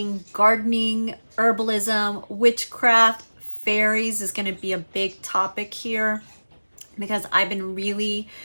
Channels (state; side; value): inverted; both; correlation -1.00